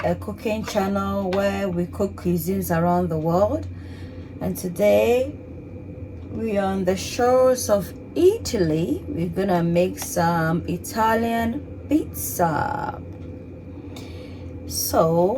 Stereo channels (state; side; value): identical; both; correlation 1.00